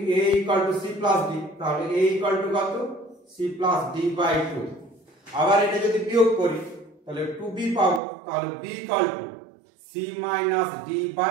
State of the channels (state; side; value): drops out; left; at 8.0 s